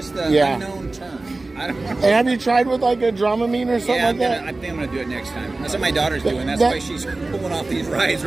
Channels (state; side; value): quieter; left; 3.2 dB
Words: the unknown turn. I don't know. And have you tried with like a Dramamine or something like that? I think I'm going to do it next time. That's what my daughter's doing. That's why she's pulling off these rides